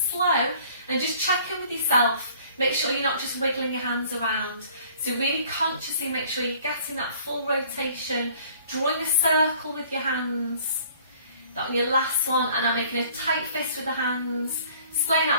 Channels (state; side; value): inverted; both; correlation -0.55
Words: slow, and just check in with yourself. Make sure you're not just wiggling your hands around. So really consciously make sure you're getting that full rotation, drawing a circle with your hands. That on your last one, and I'm making a tight fist with the hands, splaying